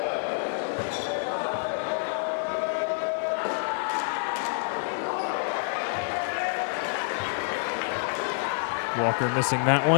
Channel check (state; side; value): silent; right; 60 dB below the other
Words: Walker missing that